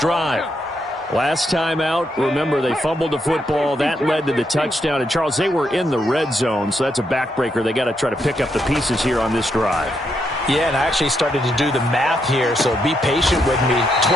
drive. Last time out, remember, they fumbled the football. That led to the touchdown. And, Charles, they were in the red zone, so that's a backbreaker. They got to try to pick up the pieces here on this drive. Yeah, and I actually started to do the math here, so be patient with me.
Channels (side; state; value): both; normal; correlation 0.79